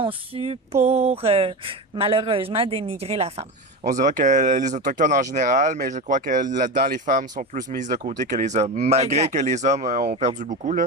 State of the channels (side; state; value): both; normal; correlation 0.22